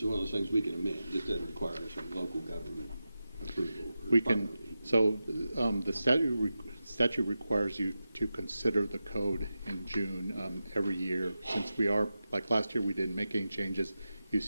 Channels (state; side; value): inverted; both; correlation -0.93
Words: one of those things we can amend. This doesn't require some local government approval. We can, so the statute requires you to consider the code in June every year. Since we are, like last year we didn't make any changes, you